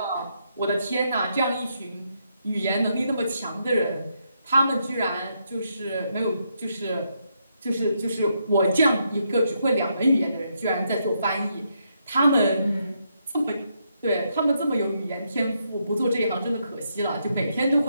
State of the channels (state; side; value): inverted; both; correlation -0.78